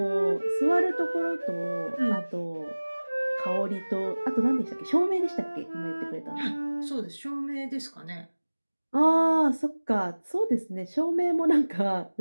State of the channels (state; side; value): inverted; both; correlation -1.00